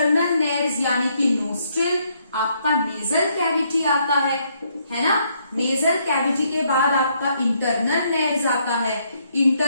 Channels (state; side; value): inverted; both; correlation -0.72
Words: नेर्व्स यानी कि नोस्ट्रिल, आपका नेजल कैविटी आता है ना। नेजल कैविटी के बाद आपका इंटरनल नेर्व्स आता है।